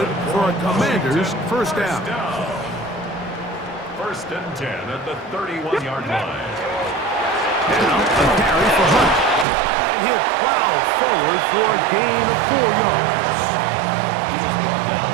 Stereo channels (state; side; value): drops out; left; at 9.5 s